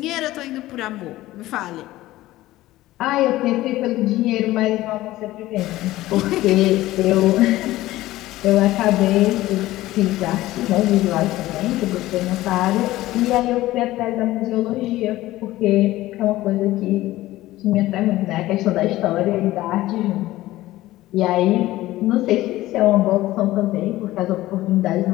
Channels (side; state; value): right; quieter; 16.5 dB